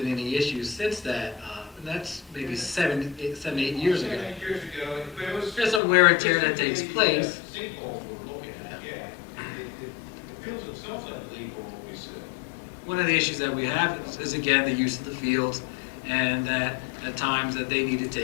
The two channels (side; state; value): right; drops out; at 5.8 s